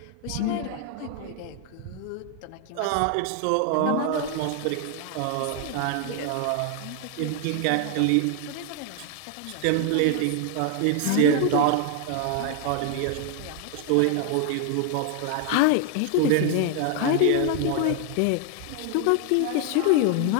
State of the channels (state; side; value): different; both; correlation 0.00